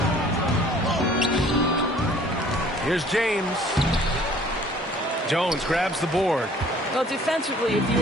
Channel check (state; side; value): normal; both; correlation 0.54